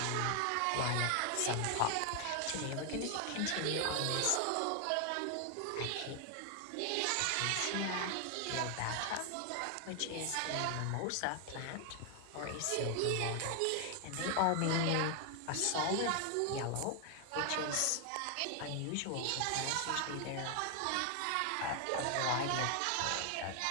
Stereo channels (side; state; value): both; different; correlation 0.00